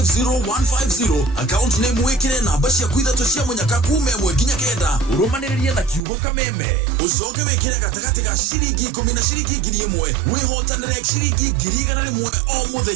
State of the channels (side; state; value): left; drops out; at 6.0 s